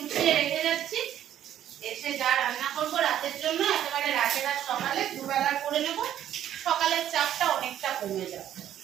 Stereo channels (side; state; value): left; quieter; 11.1 dB